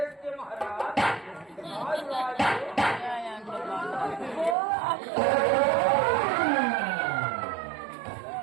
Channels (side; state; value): left; drops out; at 4.5 s